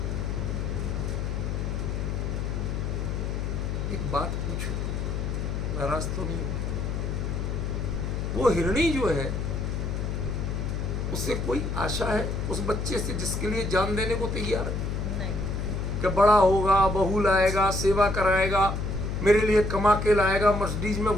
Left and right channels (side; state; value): left; noise; hum, 2 dB below the sound